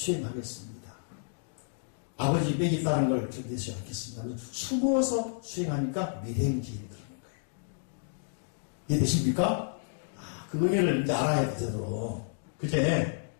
아버지 빽이 있다는 걸 견디지 않겠습니다. 숨어서 수행하니까 미행지인이 그러는 거예요. 이해되십니까? 그 의미를 이제 알아야 돼, 제대로. 그제?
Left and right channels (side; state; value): right; silent; digital silence